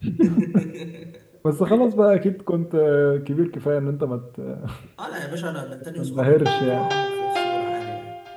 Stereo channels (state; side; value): identical; both; correlation 1.00